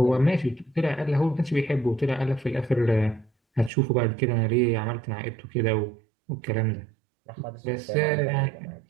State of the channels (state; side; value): drops out; left; at 3.7 s